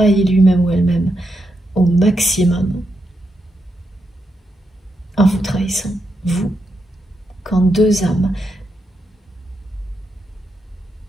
lui-même ou elle-même au maximum en vous trahissant, vous. Quand deux âmes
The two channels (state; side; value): normal; both; correlation 0.83